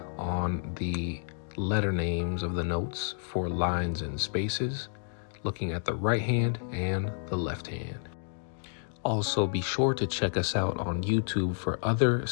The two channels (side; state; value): right; silent; digital silence